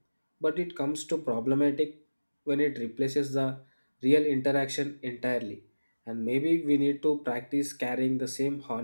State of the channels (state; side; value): inverted; both; correlation -1.00